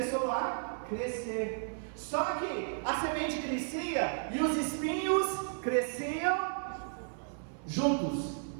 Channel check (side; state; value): left; silent; 55 dB below the other